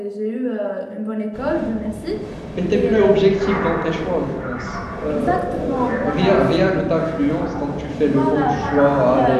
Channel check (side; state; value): both; identical; correlation 1.00